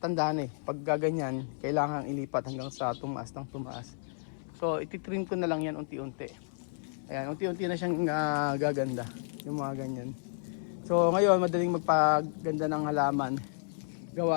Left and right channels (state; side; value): silent; right; 57 dB below the other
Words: na eh. Pag gaganyan, kailangan ilipat hanggang sa tumaas ng tumaas. So, ititrim ko na lang yan unti-unti. Ayan, unti-unti na siyang gaganda. Yung mga ganyan. So, ngayon, madaling magpaganda ng halaman.